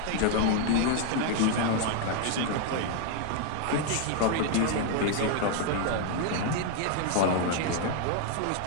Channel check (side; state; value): both; different; correlation 0.00